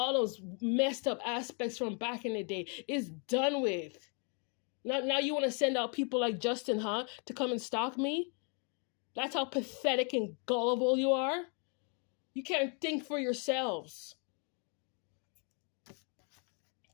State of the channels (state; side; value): quieter; right; 38.4 dB